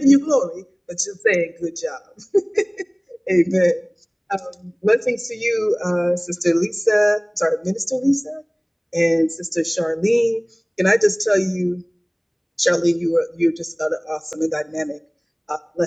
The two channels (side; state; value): both; identical; correlation 1.00